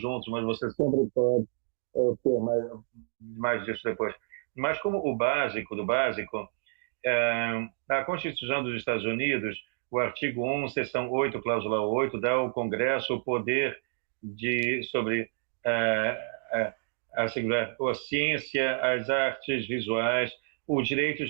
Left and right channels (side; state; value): left; silent; 58 dB below the other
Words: mas vocês sempre podem ter mais disso depois. Mas como o básico do básico, a Constituição dos Estados Unidos, o artigo 1, seção 8, cláusula 8, dá ao Congresso o poder sobre assegurar a ciência, as artes visuais,